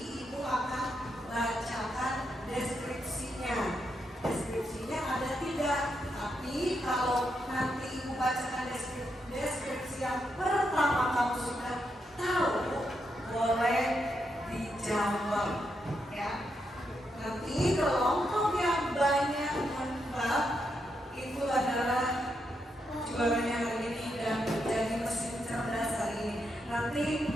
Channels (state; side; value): normal; both; correlation 0.82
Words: Ibu akan bacakan deskripsinya. Deskripsinya ada 3, tapi kalau nanti Ibu bacakan deskripsi yang pertama kamu sudah tahu, boleh dijawab ya. Nanti kelompok yang banyak menebak itu adalah juaranya hari ini dan menjadi mesin cerdas hari ini. Nanti